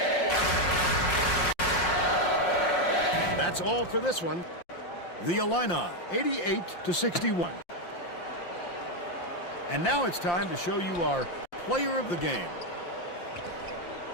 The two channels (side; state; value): right; late; 5.7 ms